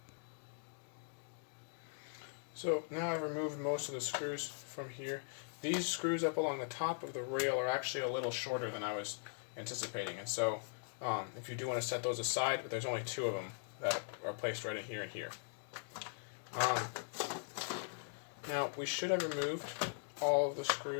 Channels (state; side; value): silent; right; digital silence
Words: So now I've removed most of the screws from here. These screws up along the top of the rail are actually a little shorter than I was anticipating, and so if you do want to set those aside, but there's only two of them that are placed right in here and here. Now we should have removed all of the